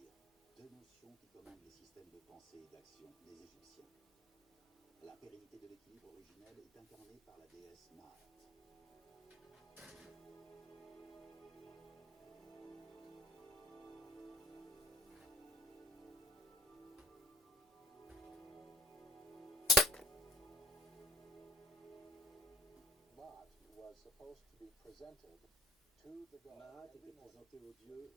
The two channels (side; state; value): both; normal; correlation 0.52